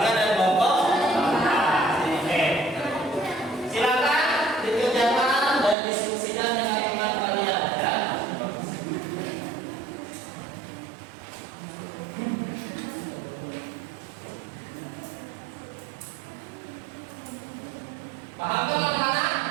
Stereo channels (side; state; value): left; drops out; at 5.8 s